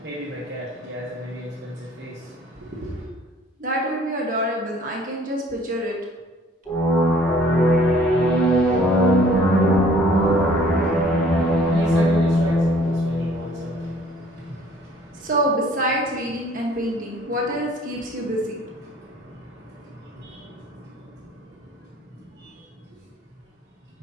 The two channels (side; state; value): both; normal; correlation 0.55